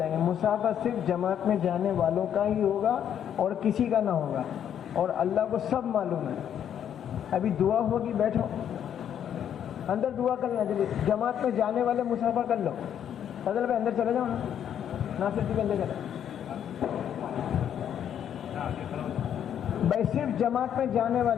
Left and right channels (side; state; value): right; quieter; 9.4 dB